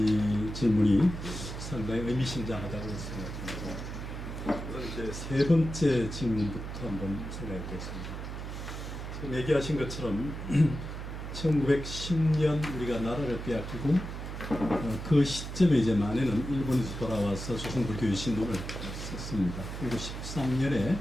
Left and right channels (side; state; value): right; noise; hum, 7 dB below the sound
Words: 질문이 상당히 의미심장하다고 생각합니다. 우선 이제 세 번째 질문부터 한번 생각해 보겠습니다. 지금 얘기하신 것처럼 1910년 우리가 나라를 빼앗기고 그 시점에 이제 만에는 일본에서 돌아와서 조선불교 유신론을 썼습니다. 그리고 13년에